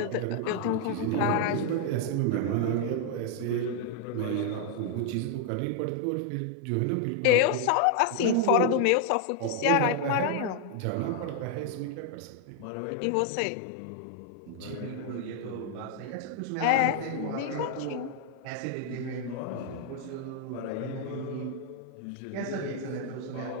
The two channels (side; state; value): both; different; correlation 0.00